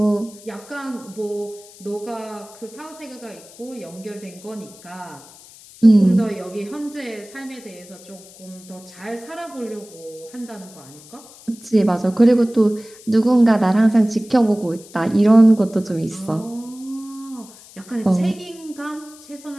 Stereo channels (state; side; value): noise; left; hiss, 21 dB below the sound